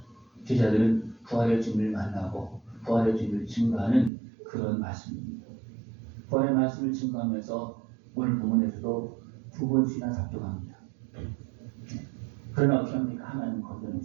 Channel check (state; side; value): drops out; left; at 4.1 s